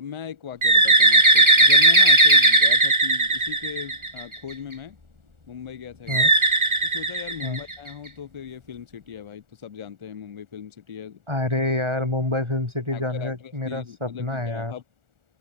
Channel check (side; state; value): left; late; 1.4 ms